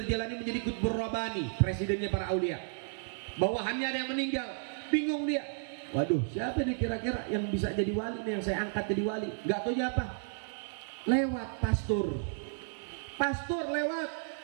Jailani menjadi Qutbur Rabbani, presidennya para aulia. Bawahannya ada yang meninggal, bingung dia. Waduh, siapa nih kira-kira yang bisa jadi wali nih, yang saya angkat jadi wali? Gak tahu apa? Lewat pastor. Pastor lewat.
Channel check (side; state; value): left; silent; digital silence